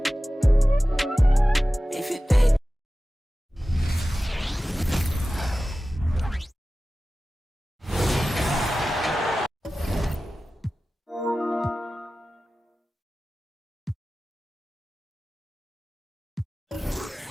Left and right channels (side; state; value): both; normal; correlation 0.96